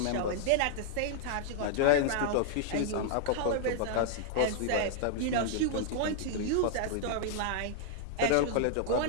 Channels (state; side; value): different; both; correlation -0.01